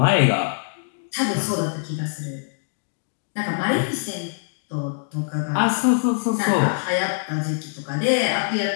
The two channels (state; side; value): silent; right; digital silence